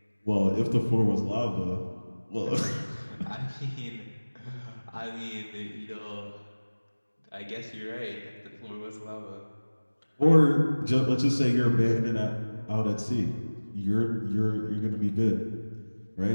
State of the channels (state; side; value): inverted; both; correlation -1.00